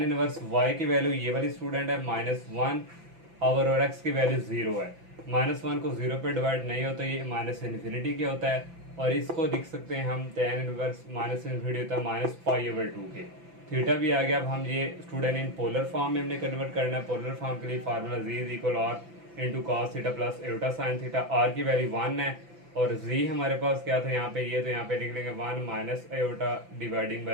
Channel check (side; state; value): left; late; 5.9 ms